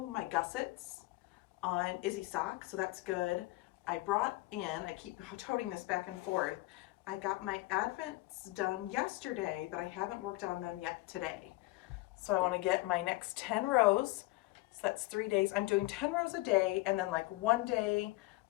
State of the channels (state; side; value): quieter; right; 20.7 dB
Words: my gussets on Izzy sock, so that's good. I brought in, I keep toting this back and forth, I got my Advents done yesterday, but I haven't worked on them yet today. So I want to get my next 10 rows. So that's 3 days. I'm doing 10 rows a day, and then like 1 day